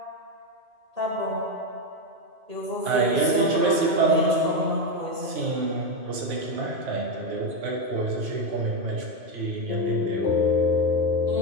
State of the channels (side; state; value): left; late; 2.5 ms